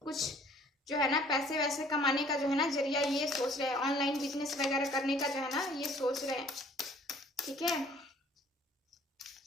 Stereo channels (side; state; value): both; normal; correlation 0.56